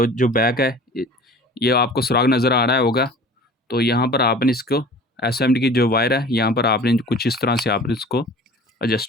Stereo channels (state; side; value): normal; both; correlation 0.44